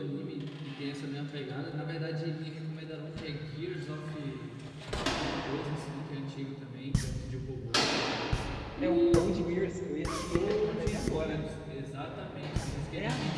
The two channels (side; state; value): both; identical; correlation 1.00